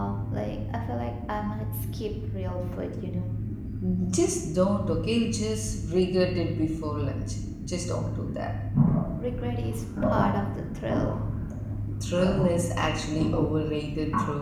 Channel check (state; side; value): identical; both; correlation 1.00